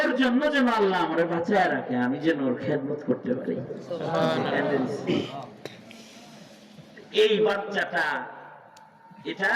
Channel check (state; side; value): identical; both; correlation 1.00